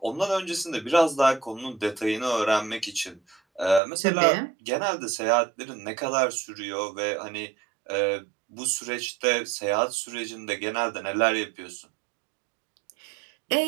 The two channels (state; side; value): drops out; left; at 3.8 s